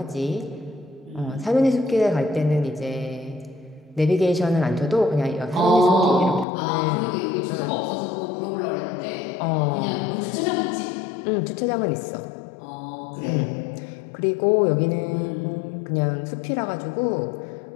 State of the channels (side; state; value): right; drops out; at 6.5 s